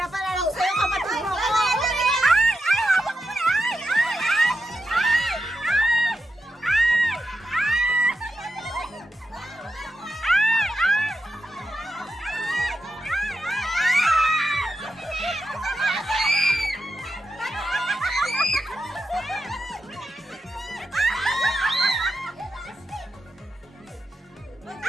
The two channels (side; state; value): both; normal; correlation 0.88